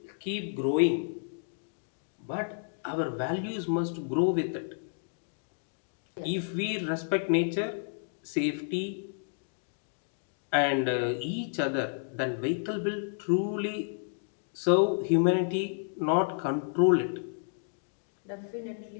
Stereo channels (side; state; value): right; silent; digital silence